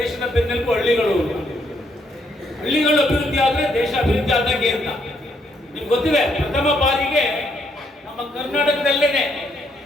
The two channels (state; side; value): normal; both; correlation 0.72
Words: ಬೆನ್ನೆಲುಬು ಹಳ್ಳಿಗಳು. ಹಳ್ಳಿಗಳು ಅಭಿವೃದ್ಧಿ ಆದ್ರೆ ದೇಶ ಅಭಿವೃದ್ಧಿ ಆದಂಗೆ ಅಂತ ನಿಮ್ಗೆ ಗೊತ್ತಿದೆ. ಪ್ರಥಮ ಬಾರಿಗೆ ನಮ್ಮ ಕರ್ನಾಟಕದಲ್ಲೇನೆ